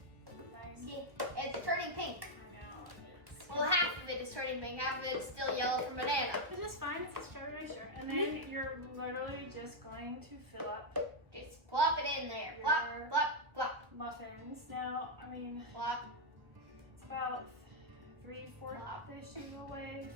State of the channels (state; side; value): late; left; 1.3 ms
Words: turning pink. I know. Well, half of it is turning pink, half of it is still yellow from banana. Which is fine, it's a strawberry shirt. And then you're literally just going to fill up Just plop it in there. Plop, plop, plop. muffins. Now, I mean, Plop. it's about 3/4-ish of the way